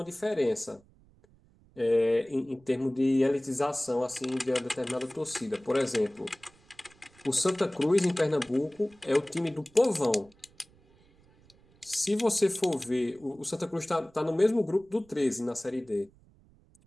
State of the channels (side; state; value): right; noise; rumble, 29 dB below the sound